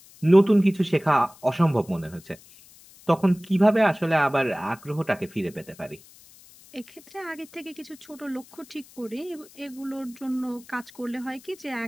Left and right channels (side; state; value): left; noise; hiss, 24 dB below the sound